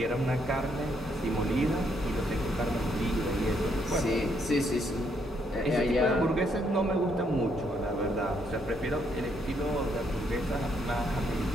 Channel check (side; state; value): both; normal; correlation 0.73